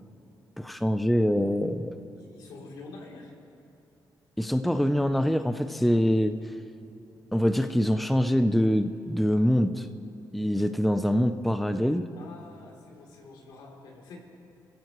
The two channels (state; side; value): normal; both; correlation 0.97